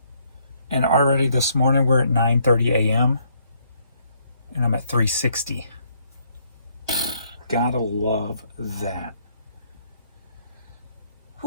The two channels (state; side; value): inverted; both; correlation -0.69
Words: And already this morning we're at 9:30 a.m. and I'm at 360. Gotta love that.